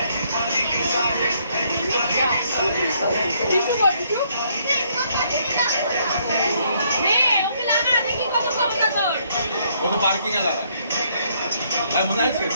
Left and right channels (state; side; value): inverted; both; correlation -0.69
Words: নে ওকে লাগা দেখি কত ক্ষমতা তোর ও তো পার্কিং এ লাগায় আর মনে আছে